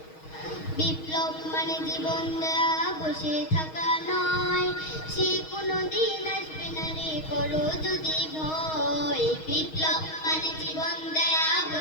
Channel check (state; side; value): late; right; 6.3 ms